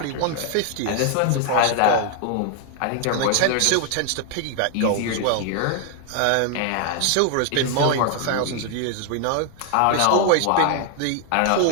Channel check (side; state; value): both; different; correlation 0.00